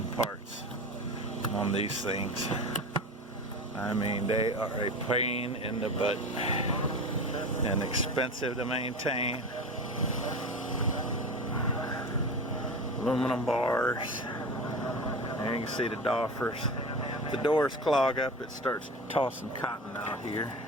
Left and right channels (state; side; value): normal; both; correlation 0.29